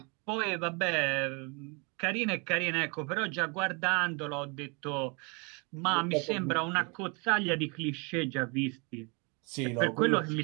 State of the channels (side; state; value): left; quieter; 31.9 dB